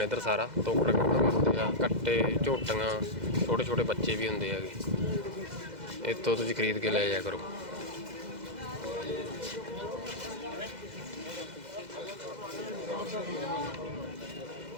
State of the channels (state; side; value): late; left; 2.0 ms